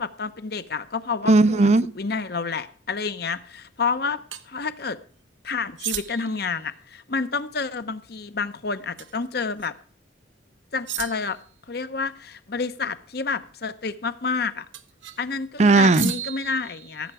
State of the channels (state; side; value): normal; both; correlation 0.41